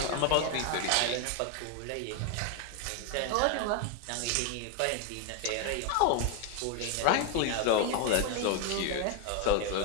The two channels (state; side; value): different; both; correlation 0.01